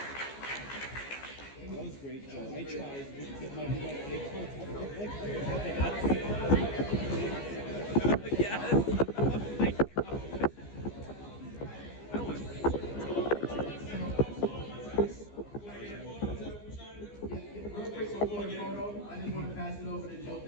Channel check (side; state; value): right; late; 15 ms